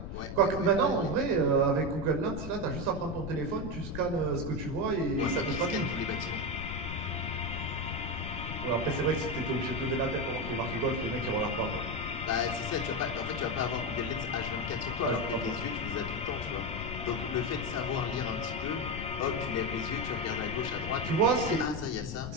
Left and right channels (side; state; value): left; noise; rumble, 6 dB below the sound